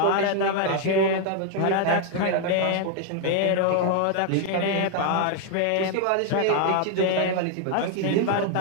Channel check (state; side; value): different; both; correlation 0.00